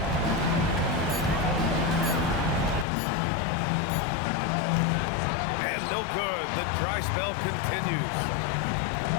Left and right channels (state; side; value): drops out; right; at 2.9 s